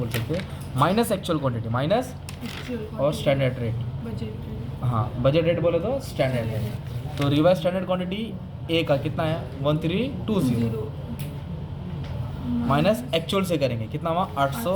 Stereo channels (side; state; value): both; identical; correlation 1.00